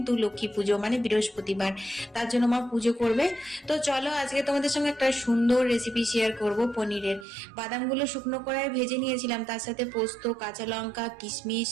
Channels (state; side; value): drops out; left; at 7.2 s